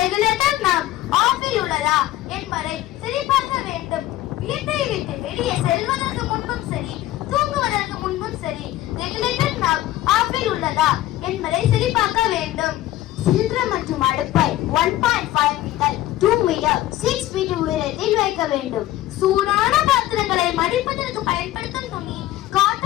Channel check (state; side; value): quieter; right; 14.8 dB